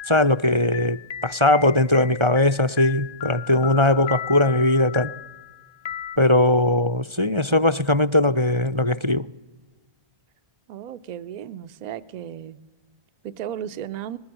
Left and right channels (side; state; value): left; late; 1.3 ms